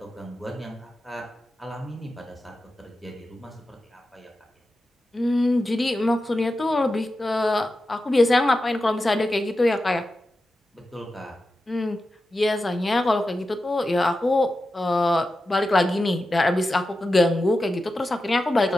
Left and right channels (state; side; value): normal; both; correlation 0.92